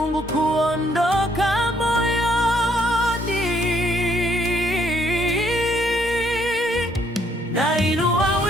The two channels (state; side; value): normal; both; correlation 0.69